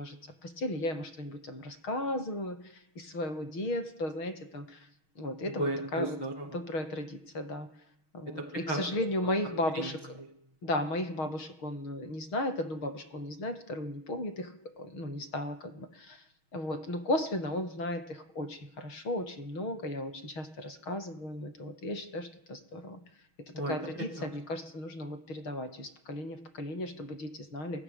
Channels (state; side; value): late; right; 6.3 ms